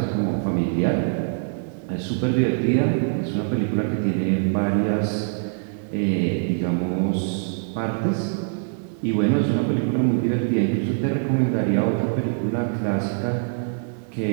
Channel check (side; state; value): left; silent; digital silence